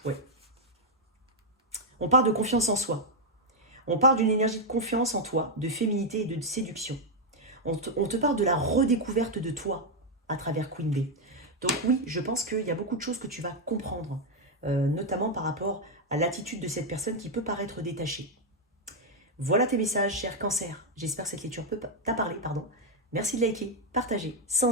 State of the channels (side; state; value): both; normal; correlation 0.00